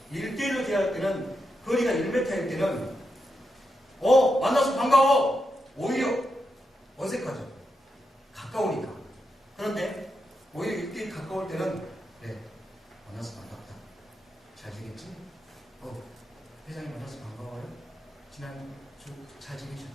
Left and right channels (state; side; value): normal; both; correlation 0.85